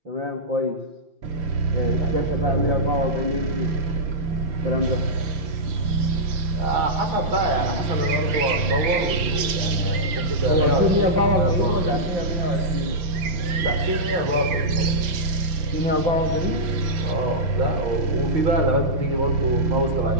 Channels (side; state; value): left; late; 5.9 ms